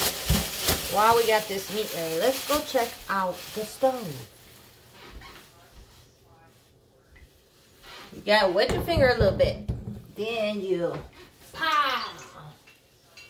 while we got this meat ready, let's go check out the stove. You gotta wet your finger a little bit. Then you pow.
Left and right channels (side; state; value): both; identical; correlation 1.00